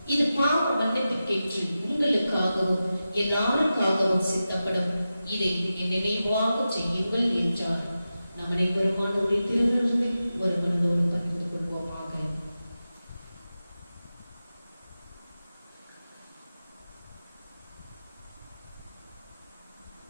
இது பாவ மன்னிப்புக்கேற்று உங்களுக்காகவும் எல்லாருக்காகவும் சித்தப்படும். இதை என் நினைவாக செய்யுங்கள் என்றார். நம் அனைவருமானவருடைய திருவிருந்தை ஒரு மனதோடு பகிர்ந்து கொள்வோமாக.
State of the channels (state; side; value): inverted; both; correlation -0.92